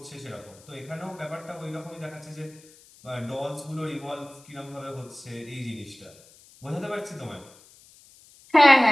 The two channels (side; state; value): left; noise; hiss, 25 dB below the sound